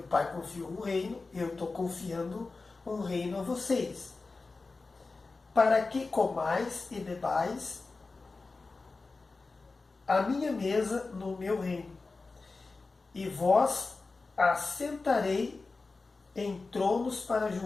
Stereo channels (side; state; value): right; quieter; 3.8 dB